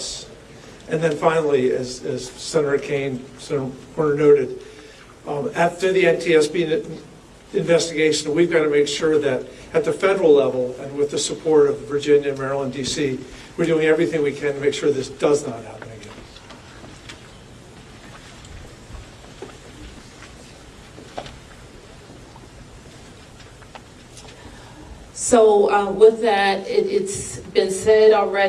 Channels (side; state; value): both; identical; correlation 1.00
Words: And then finally, as Senator Kaine, Senator Warner noted, after the NTSB investigation, we've got to make sure that at the federal level and with the support of Virginia, Maryland, D.C., we're doing everything we can to make sure this does not happen again. So with that, it's been said